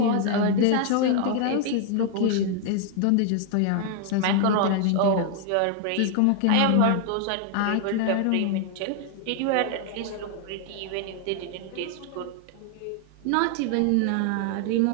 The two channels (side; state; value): both; different; correlation 0.00